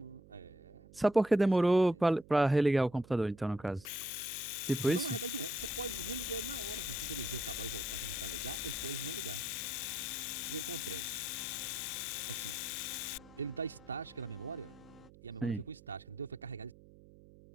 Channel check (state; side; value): noise; right; hum, 22 dB below the sound